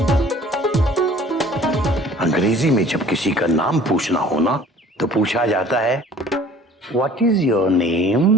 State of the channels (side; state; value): both; normal; correlation 0.51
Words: अंग्रेजी में जब किसी का नाम पूछना हो ना, तो पूछा जाता है what is your